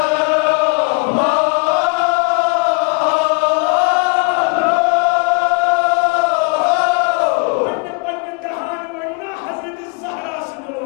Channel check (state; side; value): quieter; right; 32.0 dB